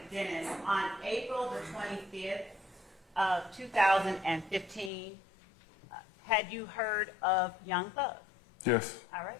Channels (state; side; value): drops out; right; at 4.9 s